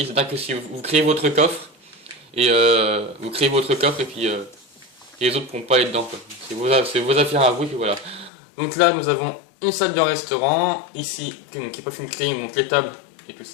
c'est-à-dire que si vous créez votre coffre, et puis les autres pourront pas aller dedans quoi. C'est vos affaires à vous et puis voilà. Donc là nous avons une salle de restaurant, ici, qui n'est pas fait une clé, donc les tables et tout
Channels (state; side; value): drops out; right; at 8.3 s